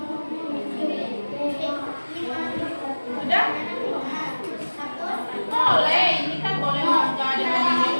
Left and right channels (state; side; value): inverted; both; correlation -1.00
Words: Sudah? Boleh, ini kan boleh jadi